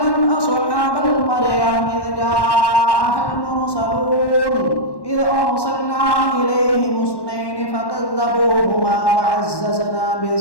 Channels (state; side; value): late; right; 1.1 ms